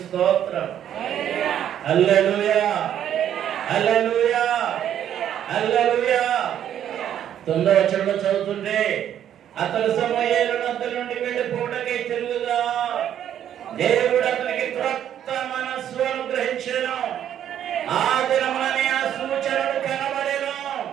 స్తోత్రం. హల్లెలూయా, హల్లెలూయా, హల్లెలూయా. 9వ వచనంలో చదువుతుంటే, అతడు సమూయేలు నద్ద నుండి వెళ్ళిపోవడకై తిరుగుగా దేవుడు అతనికి క్రొత్త మనస్సు అనుగ్రహించెను. ఆ దినముననే ఆ సూచనలు కనబడెను.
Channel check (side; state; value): left; quieter; 10.3 dB